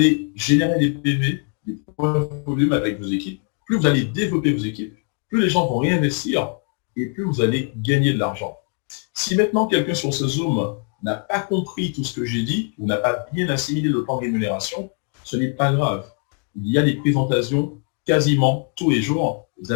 générer des PV, des points de volume avec vos équipes, plus vous allez développer vos équipes, plus les gens vont réinvestir et plus vous allez gagner de l'argent. Si maintenant quelqu'un sur ce Zoom n'a pas compris tout ce que j'ai dit ou n'a pas bien assimilé le plan de rémunération, ce n'est pas grave. Il y a des présentations quasiment tous les jours. Vous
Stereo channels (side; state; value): right; quieter; 38.4 dB